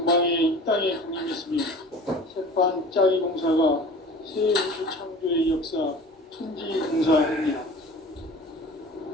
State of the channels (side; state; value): both; normal; correlation 0.41